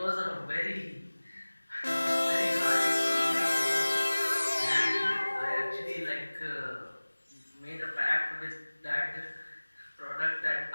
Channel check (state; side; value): inverted; both; correlation -1.00